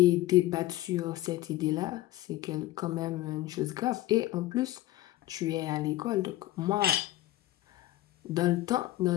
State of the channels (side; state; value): right; quieter; 15.9 dB